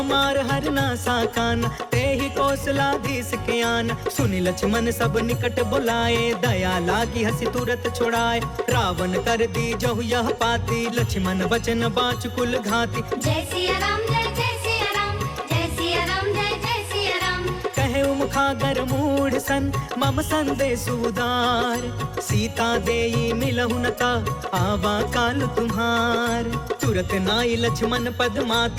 हरना साकाना, ते ही कौशलाधीश के आना। सुनि लक्ष्मण सब निकट बुलाए, दया लागी हसी तुरत छोड़ाए। रावण कर दी जहु यह पाती, लक्ष्मण वचन बाच कुल घाती। जय सिया राम जय जय सिया राम, जय सिया राम जय जय सिया राम। कहे मुखागर मूढ़ सन, मम संदेश उदार। सीता देई मिलहु न ता, आवा काल तुम्हार। तुरत नाई लक्ष्मण पद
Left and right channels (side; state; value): both; identical; correlation 1.00